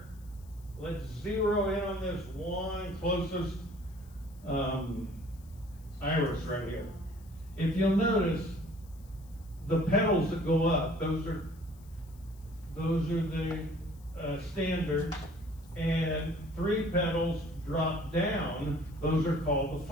let's zero in on this one closest iris right here. If you'll notice, the petals that go up, those are the standards, and three petals drop down, those are called the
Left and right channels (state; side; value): noise; left; hiss, 28 dB below the sound